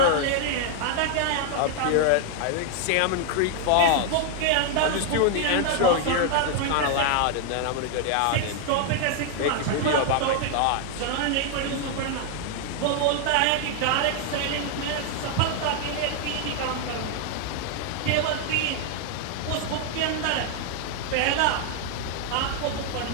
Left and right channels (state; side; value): different; both; correlation 0.00